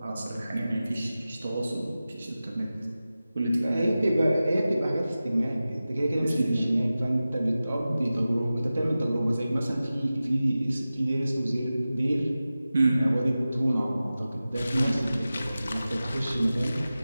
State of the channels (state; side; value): inverted; both; correlation -0.95